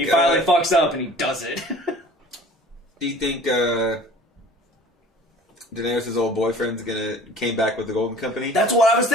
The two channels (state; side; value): normal; both; correlation 0.47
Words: finally fucks up and he does it. Do you think Daenerys' old boyfriend's came back with the Golden Company? That's what I was